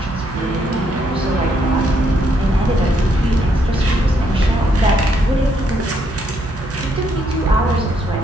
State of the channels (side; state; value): both; normal; correlation 0.73